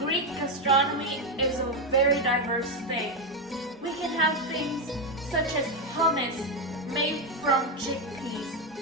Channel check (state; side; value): normal; both; correlation 0.07